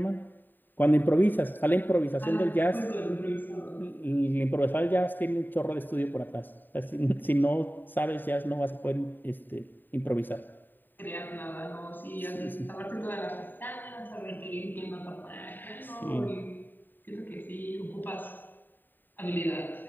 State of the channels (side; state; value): right; late; 0.091 ms